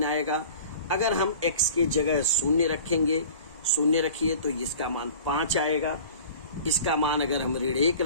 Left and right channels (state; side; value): inverted; both; correlation -0.43